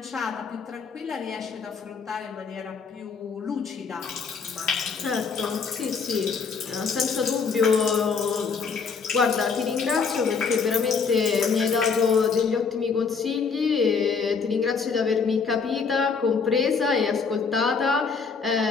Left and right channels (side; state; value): right; quieter; 5.3 dB